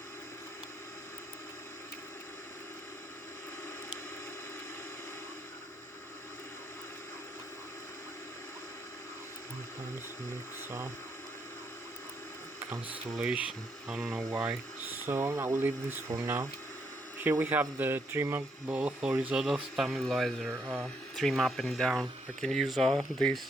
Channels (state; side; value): normal; both; correlation 0.75